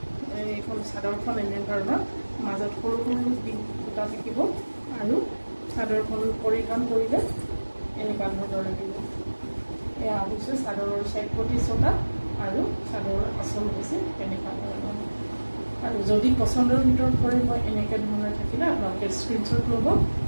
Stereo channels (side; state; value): both; inverted; correlation -1.00